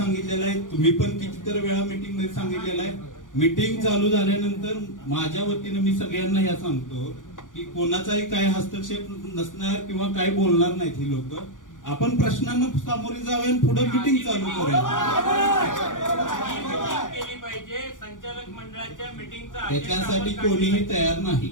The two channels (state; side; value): late; right; 0.88 ms